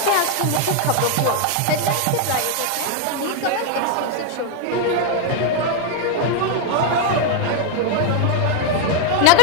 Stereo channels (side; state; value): both; different; correlation 0.00